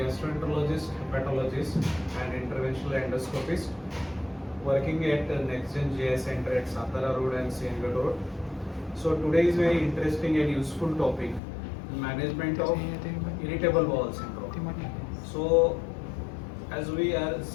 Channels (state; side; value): drops out; right; at 11.4 s